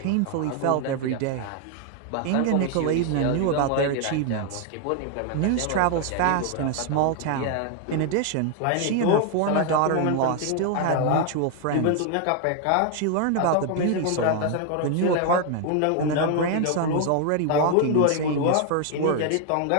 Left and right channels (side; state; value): both; different; correlation 0.00